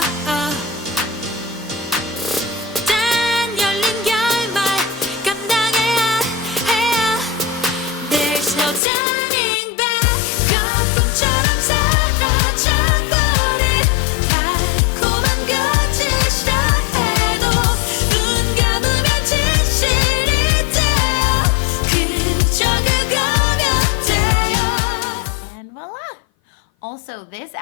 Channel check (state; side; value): drops out; right; at 8.8 s